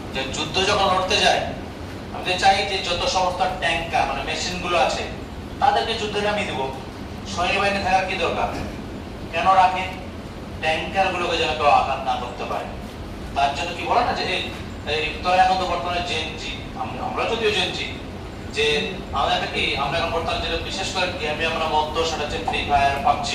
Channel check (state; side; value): identical; both; correlation 1.00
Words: যে যুদ্ধ যখন লড়তে যায়, আমি চাই যে যত সমস্ত ট্যাঙ্কার মানে মেশিন গুলো আছে তাদেরকে যুদ্ধে নামিয়ে দেবো, সৈন্যবাহিনী থাকার কি দরকার? কেন রাখে? ট্যাঙ্কার গুলোকে যেন কেউ আঘাত না করতে পারে। তার জন্য কি বলে না যে এই তোরা এখন তো বর্তমানে জেনজি, আমরা যদিও জেনজি, যে আমাদের কি আমরা এখন বর্তমানে যেটা বিশেষ করে গেমে আমরা মধ্য সেটা হচ্ছে ফ্রি ফায়ার,